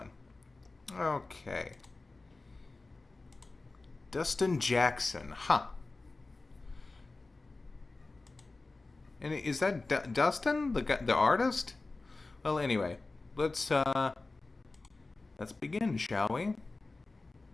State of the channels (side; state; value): right; quieter; 3.4 dB